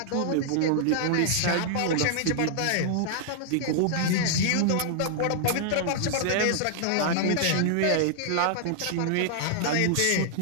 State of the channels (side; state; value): both; different; correlation -0.01